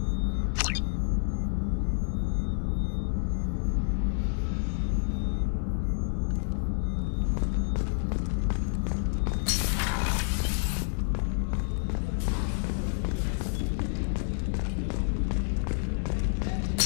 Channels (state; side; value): silent; right; digital silence